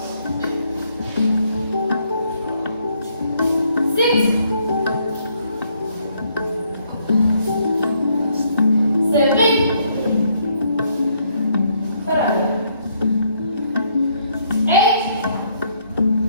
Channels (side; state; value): both; inverted; correlation -0.70